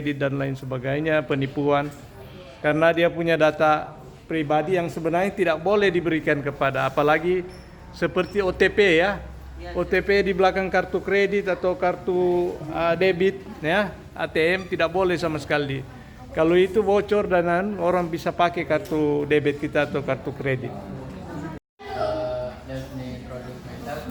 dan lain sebagainya, penipuan. Karena dia punya data pribadi yang sebenarnya tidak boleh diberikan kepada, apalagi seperti OTP ya. OTP di belakang kartu kredit atau kartu debit ya, ATM tidak boleh sama sekali. Kalau itu bocor dan orang bisa pakai kartu debit kita atau kartu kredit. Let me introduce myself.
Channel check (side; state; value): both; identical; correlation 1.00